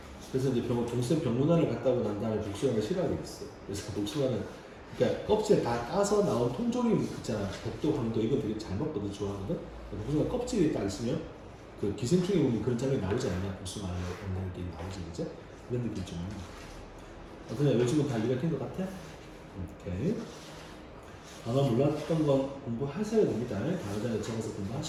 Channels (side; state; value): both; identical; correlation 1.00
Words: 그래서 이제 동생 병문안을 갔다 오고 난 다음에 복숭아를 싫어하게 됐어. 그래서 복숭아는 그러니까 껍질 다 까서 나온 통조림 있잖아. 백도, 황도 이건 되게 잘 먹거든, 좋아하거든. 복숭아 껍질이 딱 있으면 그 기생충에 보면 그런 장면이 나오지 않냐? 복숭아 먹는 게 나오지, 그죠? 그런 느낌 좀. 어떠냐? 요즘은 다 이해가 된 것 같아? 오케이. 단어 몰랐던 건 공부하셔야 됩니다. 단어장에 적어서